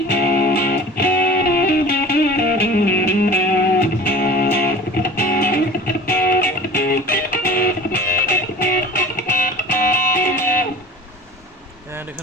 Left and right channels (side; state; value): both; normal; correlation 0.41